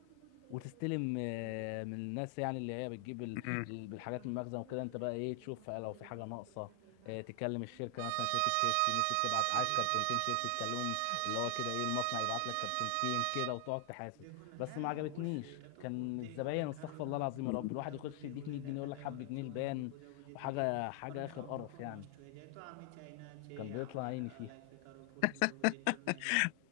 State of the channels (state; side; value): different; both; correlation 0.00